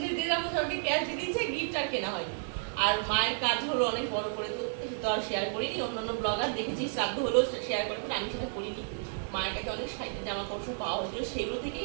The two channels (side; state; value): left; silent; digital silence